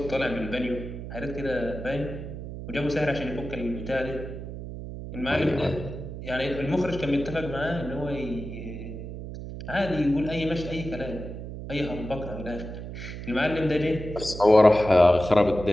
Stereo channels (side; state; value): right; noise; hum, 9 dB below the sound